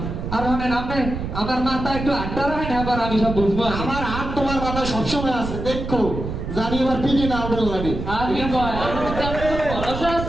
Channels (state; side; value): noise; right; rumble, 6 dB below the sound